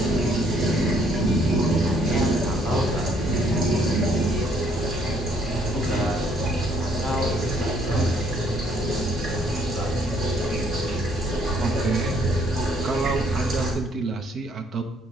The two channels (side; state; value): both; normal; correlation 0.65